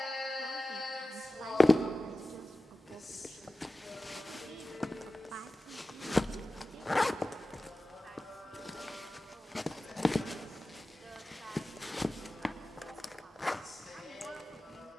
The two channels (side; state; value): both; normal; correlation 0.96